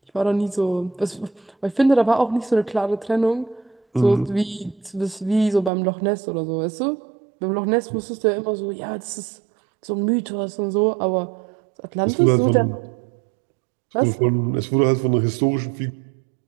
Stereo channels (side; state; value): left; drops out; at 5.7 s